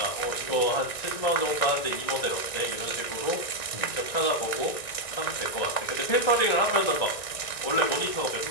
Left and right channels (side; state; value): right; late; 1.9 ms